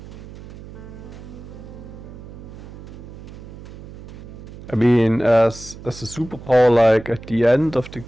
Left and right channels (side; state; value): right; noise; hum, 15 dB below the sound